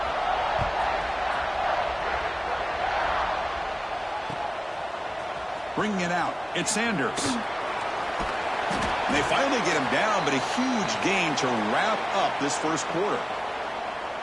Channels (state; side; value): identical; both; correlation 1.00